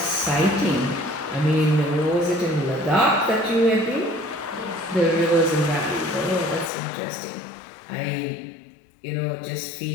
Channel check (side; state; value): right; drops out; at 6.7 s